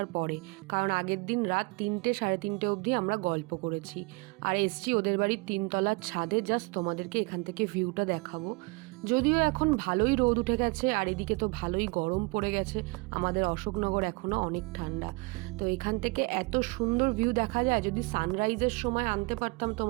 পরে, কারণ আগের দিন রাত 3টে সাড়ে 3টে অবধি আমরা গল্প করেছি। আর এসছি ওদের বাড়ির 3তলার ছাদে, জাস্ট তোমাদেরকে এখান থেকে ভিউটা দেখাবো। যদিও এখন ভালোই রোদ উঠে গেছে আর এদিকে তো ভালোই গরম পড়ে গেছে, আমাদের অশোকনগর এখনও অনেক ঠান্ডা। তো এখান থেকে এত সুন্দর ভিউ দেখা যায়, যদি সানরাইজের সময় আনতে পারতাম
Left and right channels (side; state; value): left; quieter; 28.2 dB